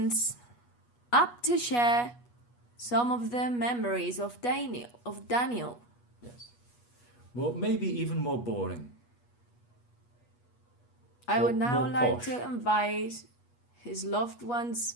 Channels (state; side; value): late; right; 8.3 ms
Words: up to share some of the memories of Daniel. Yes. Well, maybe even more boring. I would now like posh. to invite his loved